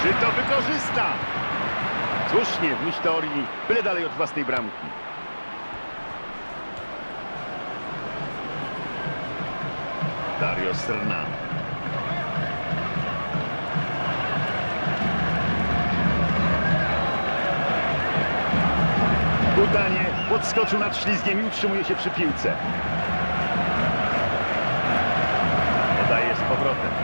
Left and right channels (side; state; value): both; inverted; correlation -1.00